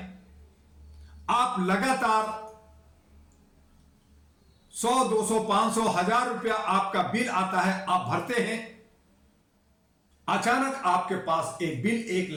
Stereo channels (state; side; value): identical; both; correlation 1.00